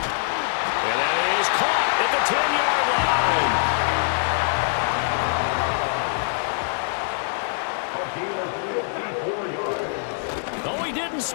And that is caught at the 10-yard line. Oh, he didn't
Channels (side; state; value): right; silent; digital silence